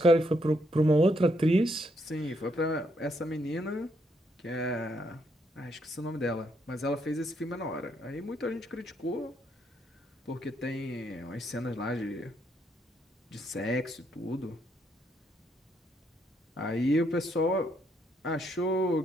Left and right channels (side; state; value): both; normal; correlation 0.74